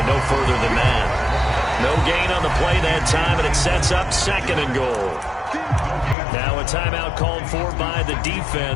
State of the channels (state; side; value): drops out; right; at 6.2 s